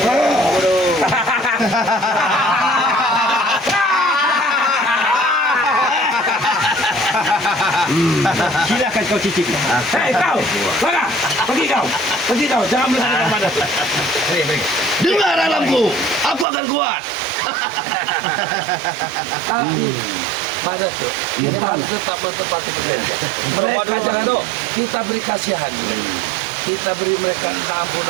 Silakan kau cicipi. Hei kau, mana? Pergi kau, jangan melihat Mak Datuk. Dengar alamku, aku akan kuat. Tapi Mak Datuk, kita harus tetap menepati perjanjian. Mereka jangan kita beri kasihan. kita beri mereka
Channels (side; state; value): left; drops out; at 16.4 s